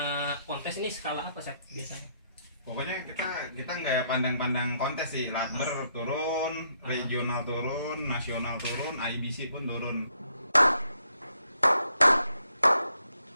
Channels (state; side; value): inverted; both; correlation -0.73